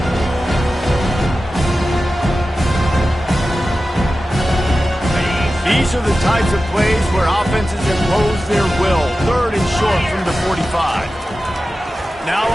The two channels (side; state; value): both; normal; correlation 0.94